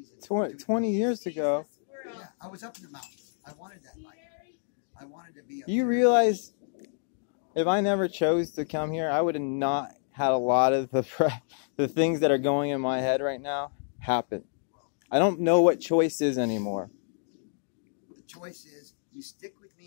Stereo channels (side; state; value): right; silent; digital silence